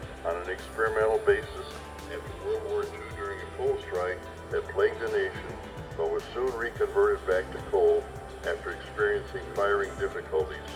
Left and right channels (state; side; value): identical; both; correlation 1.00